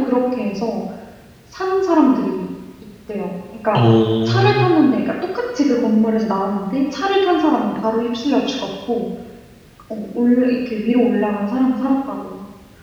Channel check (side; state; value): both; identical; correlation 1.00